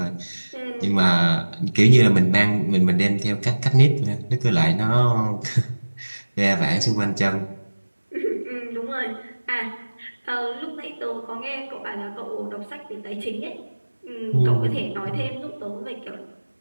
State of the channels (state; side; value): inverted; both; correlation -1.00